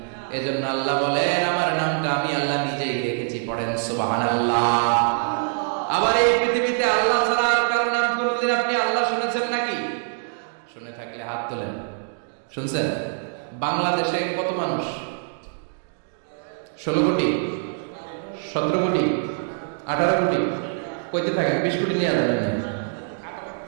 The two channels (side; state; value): left; silent; digital silence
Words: এজন্য আল্লাহ বলেন আমার নামটা আমি আল্লাহ নিজেই রেখেছি, পড়েন সুবহানাল্লাহ। আবার এই পৃথিবীতে আল্লাহ ছাড়া আর কারো নাম কোনদিন আপনি আল্লাহ শুনেছেন নাকি? শুনে থাকলে হাত তোলেন। শুনছেন? বাংলাদেশে কত মানুষ? 16 কোটি, 17 কোটি, 18 কোটি, কইতে থাকেন 20 কোটি নিয়ে যাবেন।